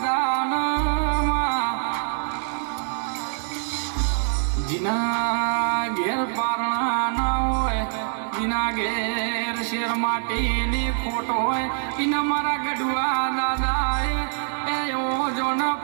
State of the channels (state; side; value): silent; left; digital silence